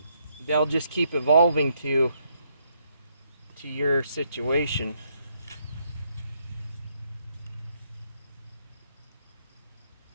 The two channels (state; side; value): inverted; both; correlation -0.75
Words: they'll just keep evolving to your situation.